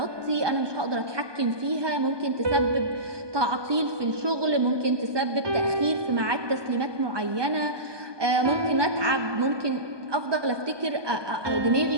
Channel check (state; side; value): late; left; 1.2 ms